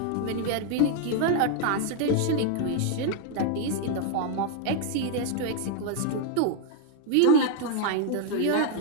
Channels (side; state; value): both; different; correlation 0.00